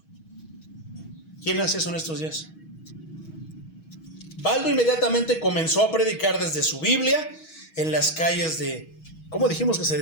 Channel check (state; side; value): late; right; 6.3 ms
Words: ¿Quién hace eso en estos días? Baldo inmediatamente comenzó a predicar desde su Biblia en las calles de, ¿cómo dijimos que se